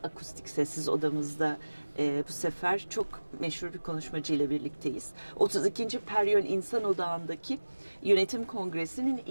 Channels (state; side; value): inverted; both; correlation -1.00